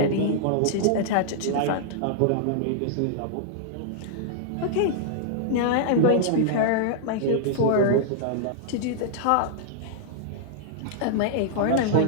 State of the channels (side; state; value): both; different; correlation -0.01